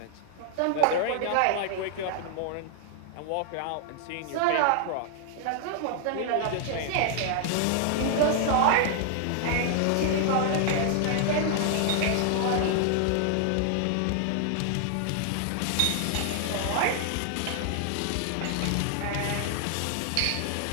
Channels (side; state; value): both; different; correlation 0.00